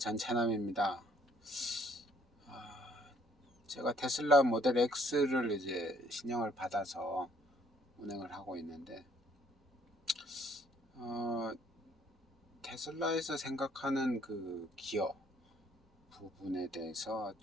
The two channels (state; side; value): normal; both; correlation 0.63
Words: 제가 테슬라 모델 X를 이제 신형을 받아서 운행을 하고 있는데, 테슬라에서 생각하는 그 기어 부분에 대해서